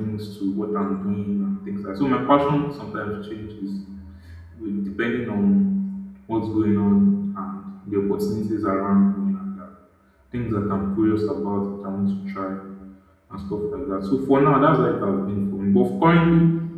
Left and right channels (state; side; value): identical; both; correlation 1.00